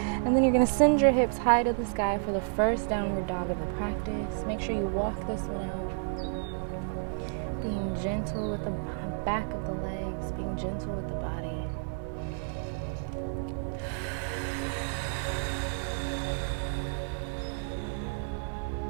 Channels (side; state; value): left; silent; digital silence